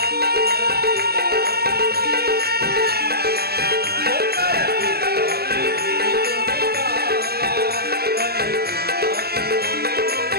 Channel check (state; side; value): late; left; 0.46 ms